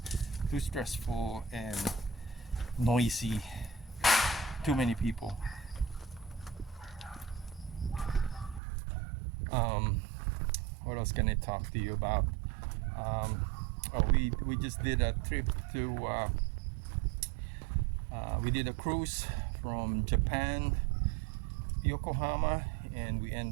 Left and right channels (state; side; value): drops out; left; at 8.6 s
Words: too stressful and noisy. Too many people. What else can I talk to you about? We just did a trip to we did a cruise from Japan, Yokohama, and we